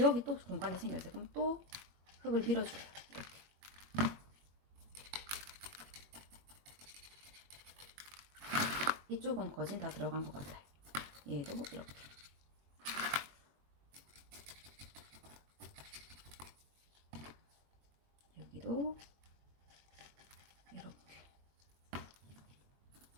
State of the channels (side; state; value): left; late; 21 ms